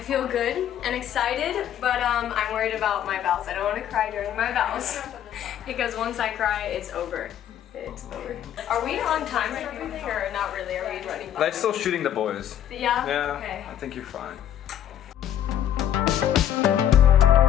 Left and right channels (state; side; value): quieter; right; 10.5 dB